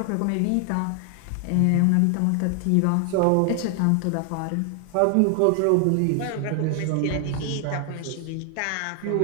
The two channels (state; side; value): different; both; correlation 0.00